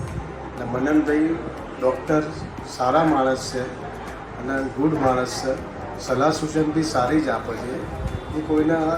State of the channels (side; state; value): both; identical; correlation 1.00